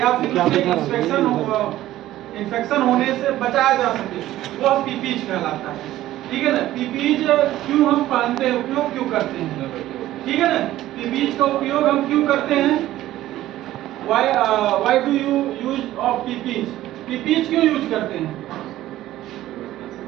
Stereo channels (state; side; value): quieter; left; 14.5 dB